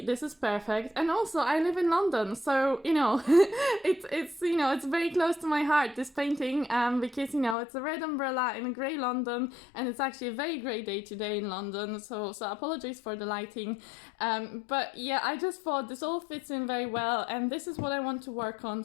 This is perfect. And also I live in London, so it's very close to my heart, this painting, because it's a red umbrella in a grey London, and it's actually a very grey day today in London, so apologies for the lighting. But yeah, I just thought this all fits in very well, and this is what I want to work on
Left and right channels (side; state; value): right; drops out; at 7.6 s